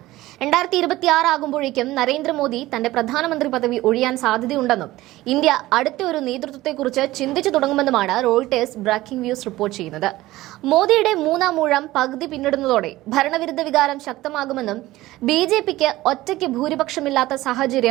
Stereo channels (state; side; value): quieter; left; 17.2 dB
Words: 2026 ആകുമ്പോഴേക്കും നരേന്ദ്രമോദി തന്റെ പ്രധാനമന്ത്രി പദവി ഒഴിയാൻ സാധ്യതയുണ്ടെന്നും ഇന്ത്യ അടുത്ത ഒരു നേതൃത്വത്തെക്കുറിച്ച് ചിന്തിച്ചു തുടങ്ങുമെന്നുമാണ് റോയിട്ടേഴ്സ് ബ്രേക്കിംഗ് ന്യൂസ് റിപ്പോർട്ട് ചെയ്യുന്നത്. മോദിയുടെ മൂന്നാം ഊഴം പകുതി പിന്നിടുന്നതോടെ ഭരണവിരുദ്ധ വികാരം ശക്തമാകുമെന്നും ബിജെപിക്ക് ഒറ്റയ്ക്ക് ഭൂരിപക്ഷമില്ലാത്ത